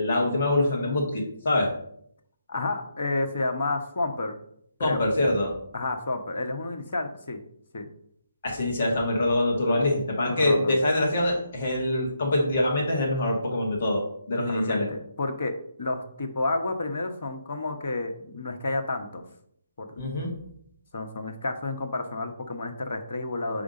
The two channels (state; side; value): inverted; both; correlation -0.80